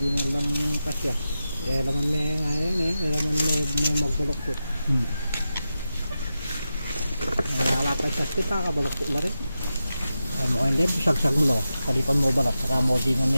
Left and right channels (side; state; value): both; inverted; correlation -0.91